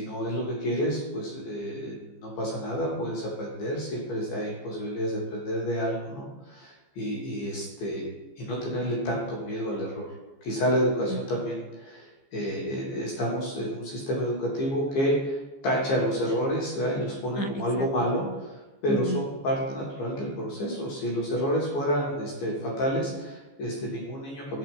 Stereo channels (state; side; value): late; right; 15 ms